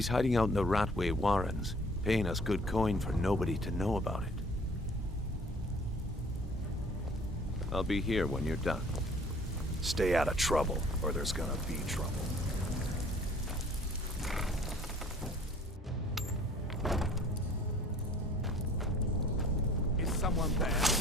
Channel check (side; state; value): both; normal; correlation 0.53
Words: hiding out in the Ratway warrens, paying us good coin for nobody to know about it. I'll be here when you're done. Stay out of trouble, or there's gonna be trouble. Is someone there?